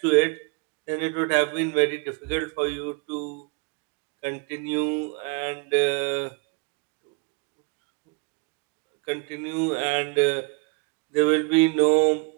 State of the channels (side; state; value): left; quieter; 31.2 dB